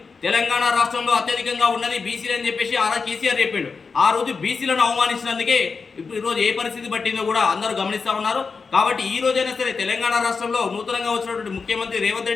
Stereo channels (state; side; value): quieter; right; 4.9 dB